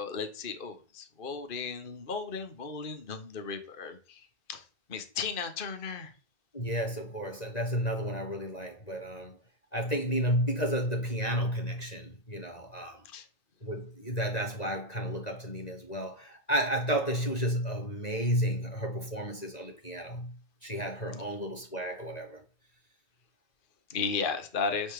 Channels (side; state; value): right; late; 1.9 ms